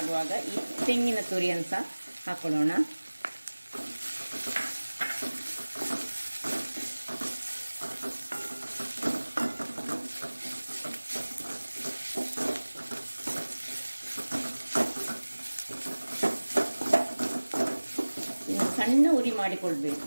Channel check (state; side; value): inverted; both; correlation -1.00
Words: ಈ ತೆಂಗಿನ ತುರಿಯನ್ನು ಸಹ ಹಾಕೊಳ್ಳೋಣ. ಸಣ್ಣ ಉರಿ